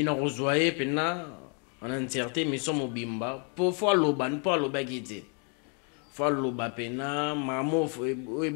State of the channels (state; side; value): quieter; right; 38.1 dB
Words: rejoyer pena en entièreté mission mobimba pour fois loban pour lobagité fois loba pena mamo oui